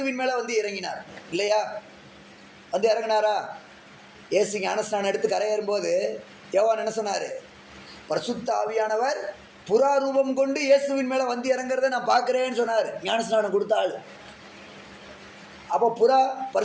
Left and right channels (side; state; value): both; identical; correlation 1.00